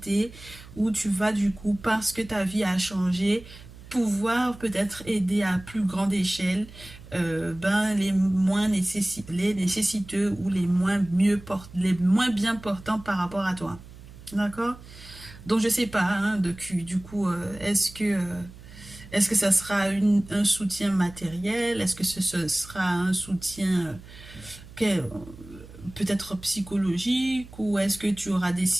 où tu vas du coup, parce que ta vie a changé, pouvoir peut-être aider à plus grande échelle les moins les nécessiteux ou les moins bien portants par rapport à toi. D'accord? Donc je sais pas, hein, du coup, est-ce que ça sera un soutien matériel? Est-ce que ce sera un soutien peut-être psychologique? Ou est-ce que tu auras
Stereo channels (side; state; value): right; noise; hum, 18 dB below the sound